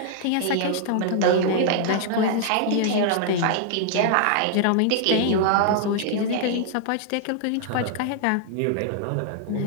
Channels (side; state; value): both; different; correlation -0.01